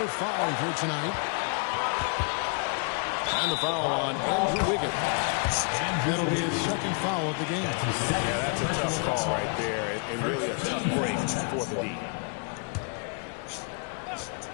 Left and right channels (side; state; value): right; quieter; 38.9 dB